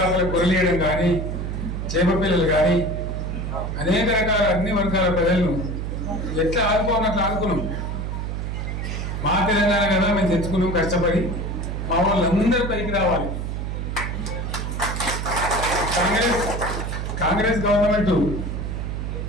గొర్రెలు వేయడం కానీ, చేప పిల్లలు కానీ, అనేక రకాల అన్ని వర్గాల ప్రజలను ఎట్లా ఆదుకోవాలి అట్లా ఆదుకున్నాం. మా తెలంగాణ కదా మేము తెచ్చుకున్నాం కష్టపడి. మా వాళ్ళందరూ పైకి రావాలి. కాంగ్రెస్ గవర్నమెంట్,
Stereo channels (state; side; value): noise; right; hum, 3 dB below the sound